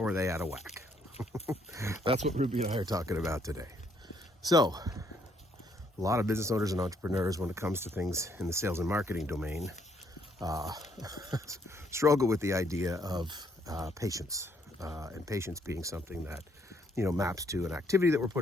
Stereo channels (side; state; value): both; normal; correlation 0.69